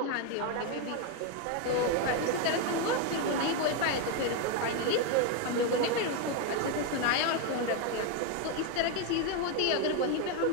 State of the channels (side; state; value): both; different; correlation 0.02